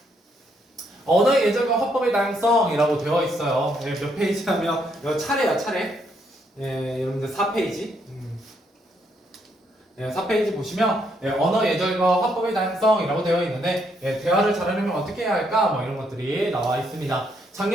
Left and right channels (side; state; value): both; normal; correlation 0.74